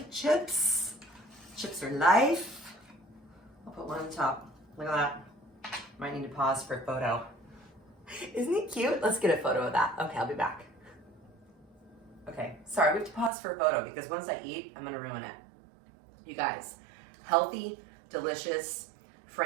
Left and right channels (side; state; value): left; drops out; at 13.3 s